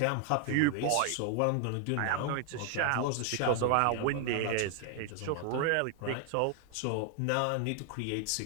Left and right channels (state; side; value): different; both; correlation 0.00